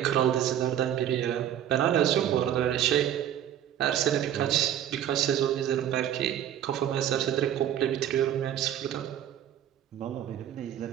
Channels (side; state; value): left; quieter; 10.6 dB